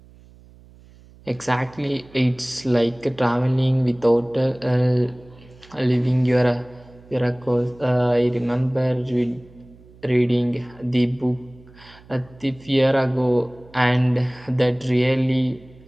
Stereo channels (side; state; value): right; noise; hum, 24 dB below the sound